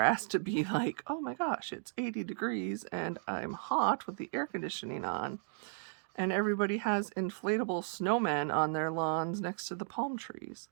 to be like, oh my gosh, it's 80 degrees and I'm hot with the air conditioning on. And everybody has inflatable snowmen on their lawns next to the palm trees.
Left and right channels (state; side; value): silent; left; digital silence